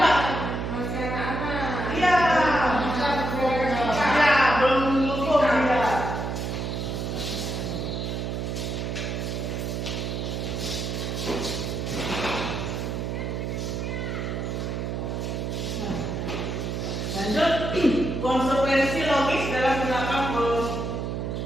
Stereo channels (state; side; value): noise; right; hum, 3 dB below the sound